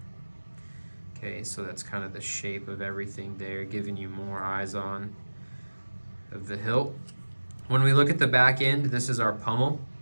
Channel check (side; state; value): both; inverted; correlation -1.00